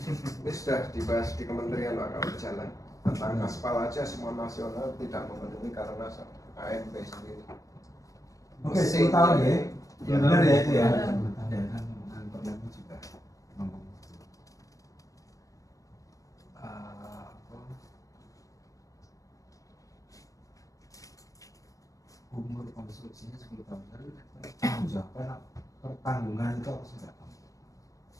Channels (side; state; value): right; late; 0.16 ms